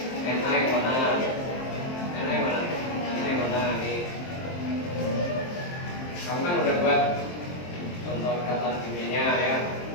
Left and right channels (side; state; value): right; late; 23 ms